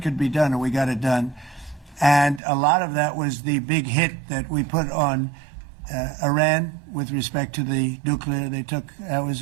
could be done, and we got it done. And a lot of that was the big hit that we put on Iran with respect to the nuclear. They took that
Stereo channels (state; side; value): drops out; left; at 2.4 s